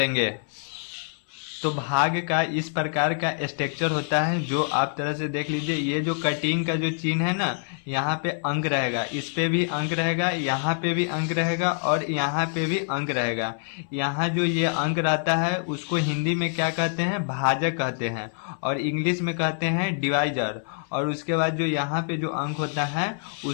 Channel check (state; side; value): silent; right; 61 dB below the other